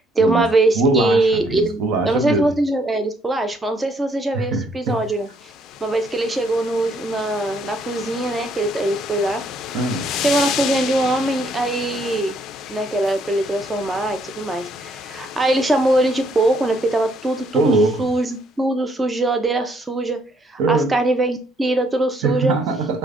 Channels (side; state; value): both; normal; correlation 0.69